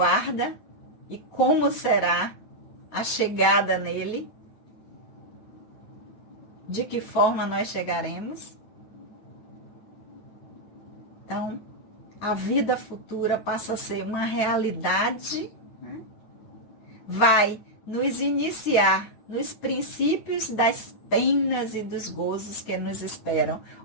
e como será a chegada nele, de que forma nós chegaremos. Então, a vida futura passa a ser uma realidade, né? Vai nos iniciar nos princípios das penas e dos gozos que nos esperam.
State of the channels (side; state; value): right; late; 9.1 ms